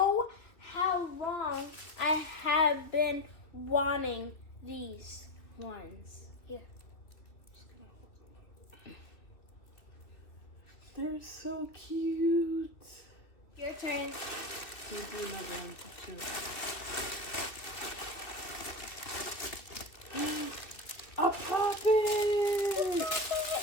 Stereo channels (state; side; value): late; right; 2.4 ms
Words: how long I have been wanting these ones. Here. Just gonna hold them up. They're so cute. Your turn. We'll do another one too. A poppet!